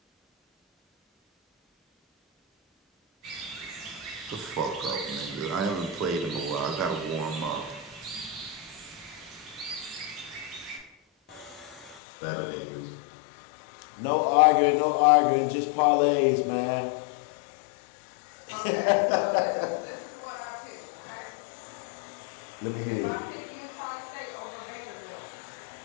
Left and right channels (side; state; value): right; drops out; at 12.0 s